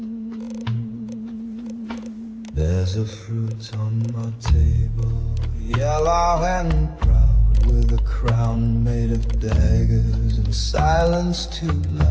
There's There's a fruit on my table, yellow and proud, with a crown made of daggers and silence too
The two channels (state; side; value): identical; both; correlation 1.00